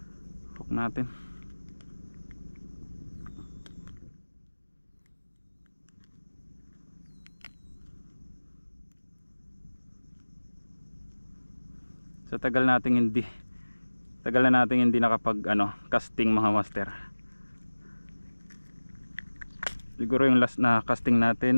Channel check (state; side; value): inverted; both; correlation -1.00